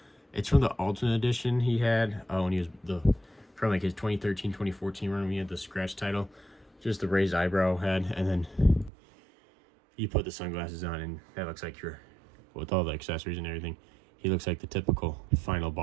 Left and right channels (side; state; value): left; drops out; at 8.9 s